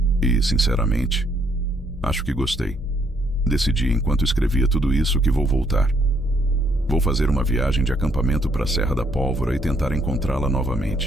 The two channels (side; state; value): both; normal; correlation 0.70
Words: E, sinceramente, acho que gostei. Decidi enquanto escrevia tudo isso que vou voltar. Vou fazer uma viagem de acampamento para a Serra da Pólvora e tentar encontrá-la